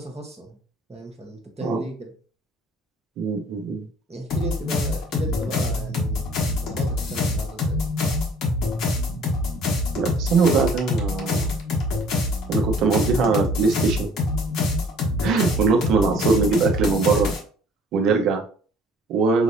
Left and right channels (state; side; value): normal; both; correlation 0.54